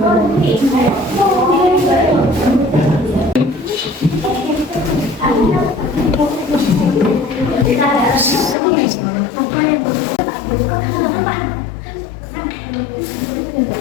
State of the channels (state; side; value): drops out; right; at 8.6 s